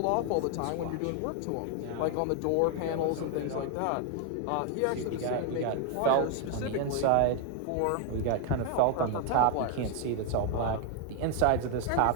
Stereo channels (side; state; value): both; different; correlation 0.01